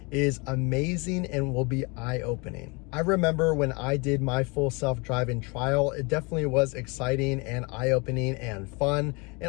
is amazing and will be eye-opening. I remember when I did my full self-driving trial, it definitely was exciting and eye-opening and fun,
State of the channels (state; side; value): quieter; right; 29.1 dB